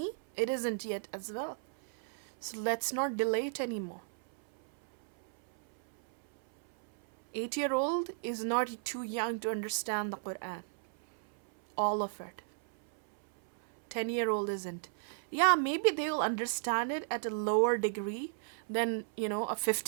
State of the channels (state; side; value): silent; left; 55 dB below the other